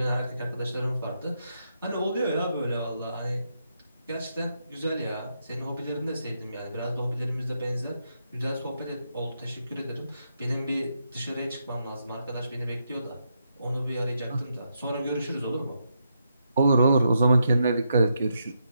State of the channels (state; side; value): inverted; both; correlation -0.81